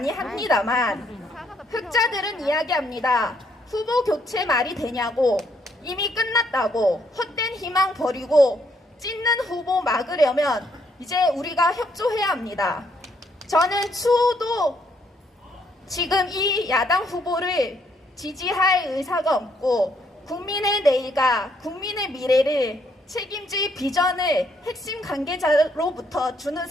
합니다만 흑자들은 이야기합니다. 후보 교체 말이 되냐고, 이미 끝났다고, 헛된 희망 버리고 찢는 후보 막으려면 이제 우리가 협조해야 합니다. 저는 추호도 지금 이 야당 후보를 지지할 의사가 없고 국민의 내일과 국민의 미래를 책임질 비전을 핵심 관계자로부터 주는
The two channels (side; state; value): both; normal; correlation 0.71